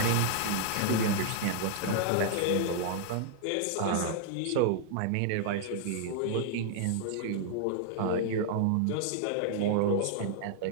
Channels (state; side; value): different; both; correlation -0.01